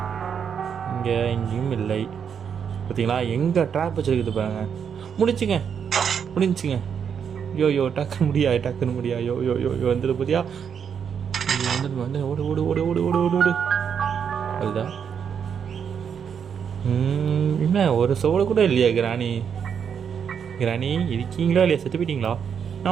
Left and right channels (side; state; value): left; quieter; 7.4 dB